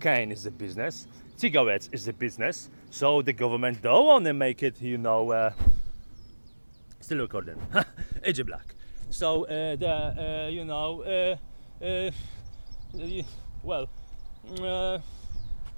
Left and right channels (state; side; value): inverted; both; correlation -1.00